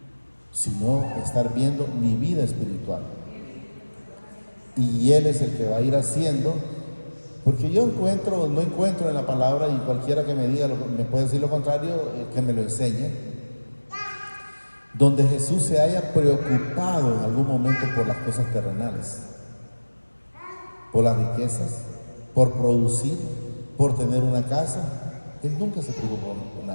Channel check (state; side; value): inverted; both; correlation -1.00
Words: sino estar viendo mi vida espiritual. Y Él es el que va a ir haciendo, porque yo no encuentro en la palabra, y cualquiera que me diga, me puede decir lo contrario, que me lo enseñe, donde Jesús se haya preocupado en algún momento por las cosas terrenales, por las riquezas, por producir, por tener una casa. Él nunca se preocupó por